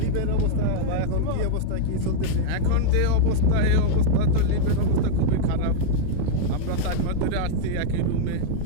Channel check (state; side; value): different; both; correlation -0.01